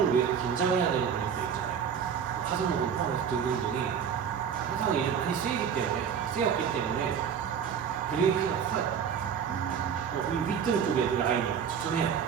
위해서 긴장해야 되는 근육들 있잖아요. 하승근 포함해서 등등등이 항상 이제 많이 쓰였기 때문에 근육의 피가 커요. 이 윗등 쪽에도 라인이 추천해요.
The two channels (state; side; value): quieter; left; 7.6 dB